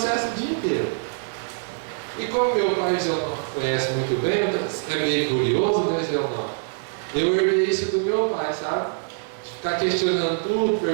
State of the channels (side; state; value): left; silent; digital silence